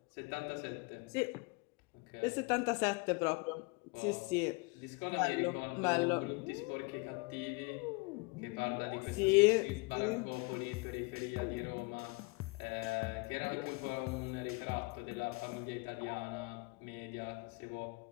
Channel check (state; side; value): quieter; right; 28.6 dB